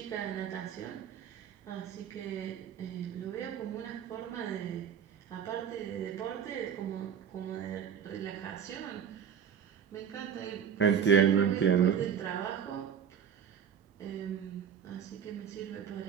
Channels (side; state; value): left; quieter; 8.0 dB